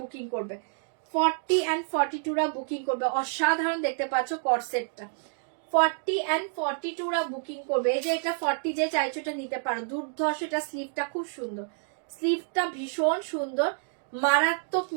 বুকিং করবে। 40 and 42 রা বুকিং করবে। অসাধারণ দেখতে পাচ্ছ কর্সেটটা। 40 and 42 রা বুকিং করবে। এই যে এটা 40 যে চাইছো এটা নিতে পারো। দুর্ধর্ষ, এটা স্লিভটা খুব সুন্দর, স্লিভটা ভীষণ সুন্দর, মারাত্মক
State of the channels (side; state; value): left; silent; digital silence